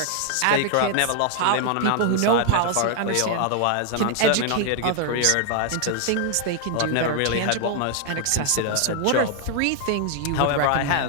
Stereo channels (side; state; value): both; different; correlation 0.00